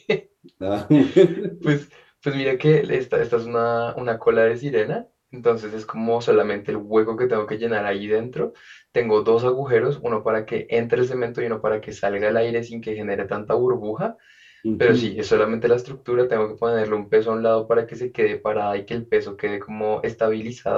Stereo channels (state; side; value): identical; both; correlation 1.00